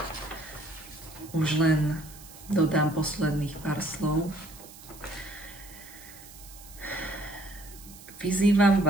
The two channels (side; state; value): right; noise; hiss, 18 dB below the sound